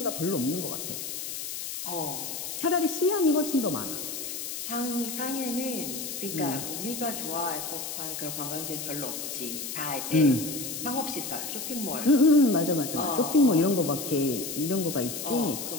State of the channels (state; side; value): noise; left; hiss, 6 dB below the sound